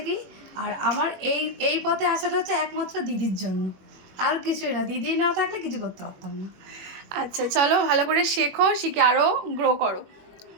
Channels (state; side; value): late; left; 21 ms